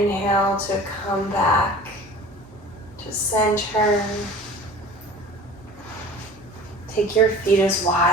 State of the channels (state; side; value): normal; both; correlation 0.41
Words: to come back to center. Take your feet as